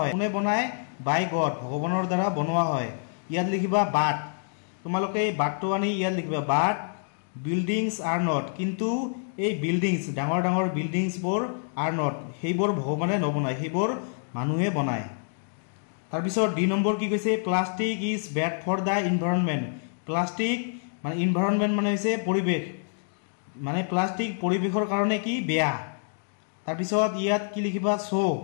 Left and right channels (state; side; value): silent; right; digital silence